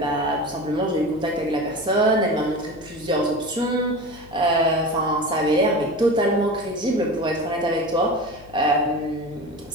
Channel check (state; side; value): noise; left; hum, 21 dB below the sound